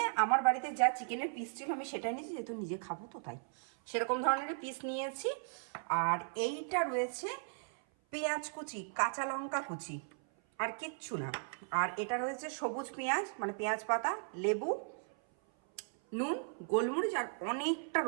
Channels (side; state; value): left; silent; 53 dB below the other